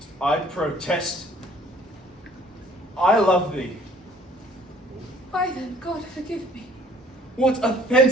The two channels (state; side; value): normal; both; correlation 0.56